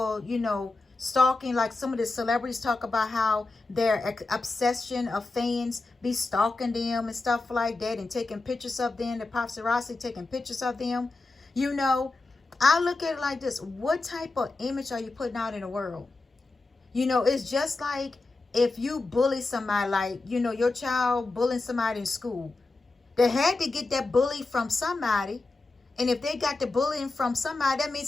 you know, stalking, like some of the celebrities talk about how their obsession of fans be stalking them and stuff like that and taking pictures of them, the paparazzi taking pictures of them. You know, I look at it like this. What type of image are you putting out in the world? You know, it's just like if you bully somebody, like, you know, your child bullying somebody in school. They had to get that bully from somebody. And if they got the bullying from somebody, that means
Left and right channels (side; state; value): right; quieter; 3.3 dB